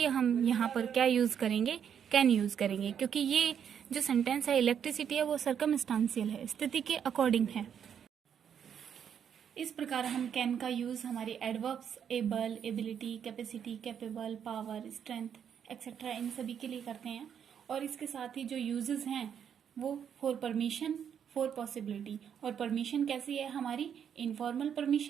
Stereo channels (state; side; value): quieter; left; 8.3 dB